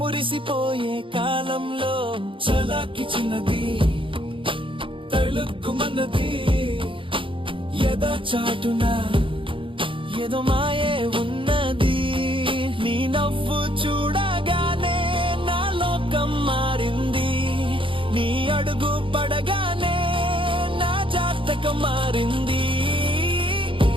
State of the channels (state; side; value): late; left; 0.25 ms